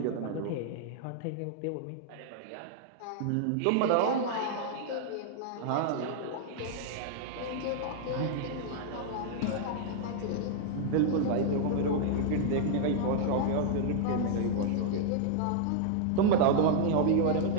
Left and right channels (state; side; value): different; both; correlation -0.01